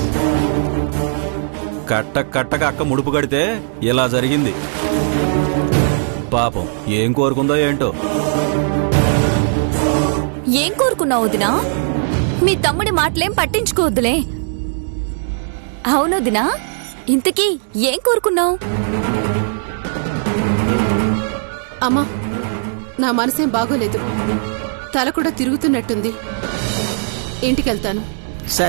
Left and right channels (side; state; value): left; silent; digital silence